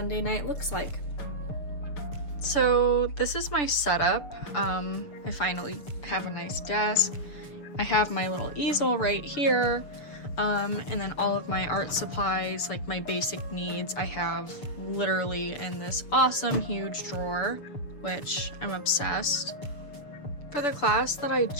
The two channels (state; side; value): late; right; 6.9 ms